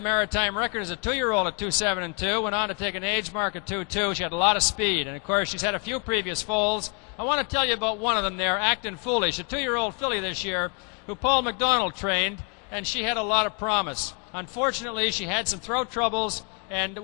Maritime record as a 2-year-old at 2.7 and 2, went on to take an age mark at 2.2. She had a lot of speed, and of course she's had a few previous foals. I want to tell you about one of them there, Actin' Foolish, a 2-year-old filly this year who Paul McDonald trained, and she had a lot of promise. Unfortunately, she had some throat troubles and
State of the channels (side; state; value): right; quieter; 37.0 dB